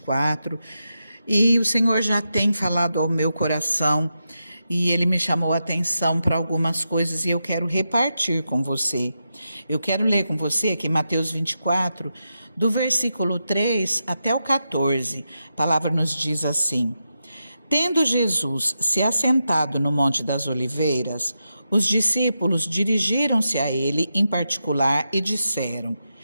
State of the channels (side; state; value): both; inverted; correlation -0.87